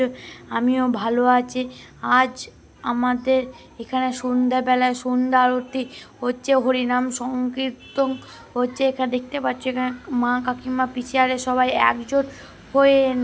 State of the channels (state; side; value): identical; both; correlation 1.00